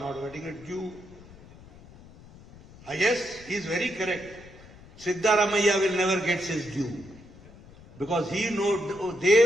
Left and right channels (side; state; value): left; noise; rumble, 21 dB below the sound